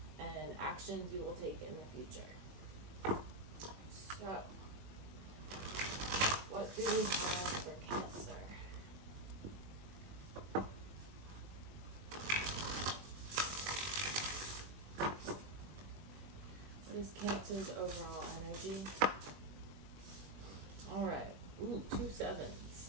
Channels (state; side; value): late; left; 21 ms